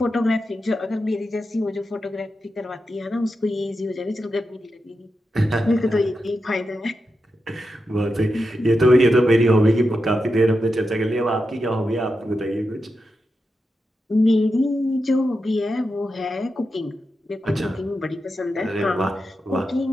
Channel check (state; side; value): normal; both; correlation 0.88